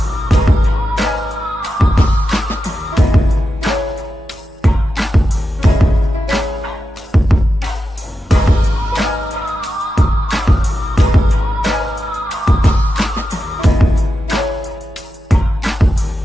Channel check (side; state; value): both; normal; correlation 0.89